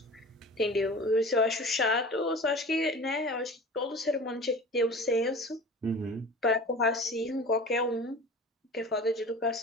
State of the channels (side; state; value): both; normal; correlation 0.37